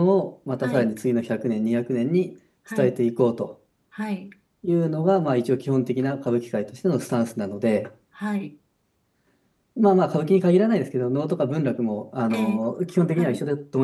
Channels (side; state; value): both; identical; correlation 1.00